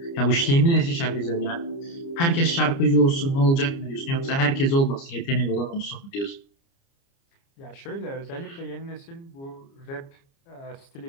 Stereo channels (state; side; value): late; right; 29 ms